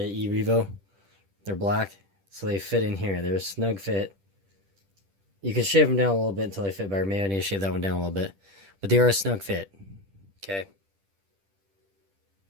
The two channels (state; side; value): late; left; 10 ms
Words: E-Revo. They're black. So they fit in here. They're a snug fit. You can shave them down a little bit until they fit better. Maybe I need to shave that one down a little bit. But they are a snug fit. Okay.